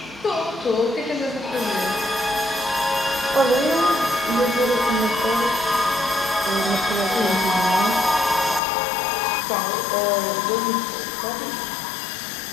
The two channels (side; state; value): right; drops out; at 8.6 s